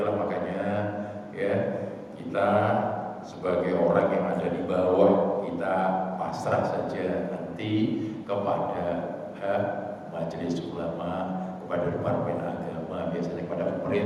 makanya ya kita sebagai orang yang ada di bawah kita pasrah saja nanti kepada majelis ulama, kepada departemen agama, biasanya kepada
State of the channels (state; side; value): identical; both; correlation 1.00